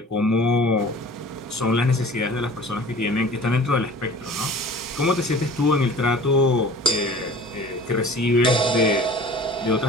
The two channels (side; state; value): both; normal; correlation 0.44